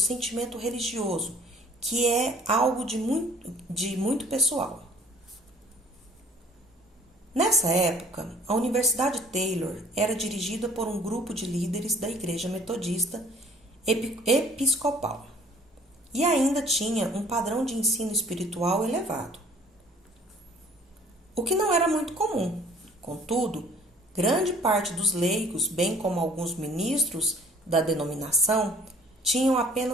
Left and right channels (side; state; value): both; normal; correlation 0.54